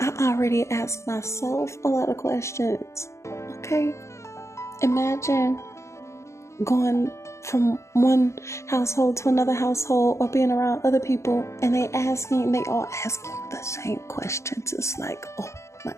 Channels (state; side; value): late; right; 0.14 ms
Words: already asked myself a lot of questions. Okay. Imagine going from one household to another household, or being around other people, and they all ask you the same questions. It's like, oh my